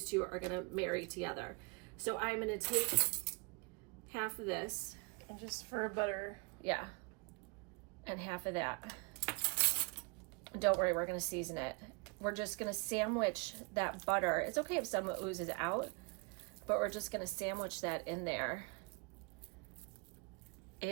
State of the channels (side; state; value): left; quieter; 31.2 dB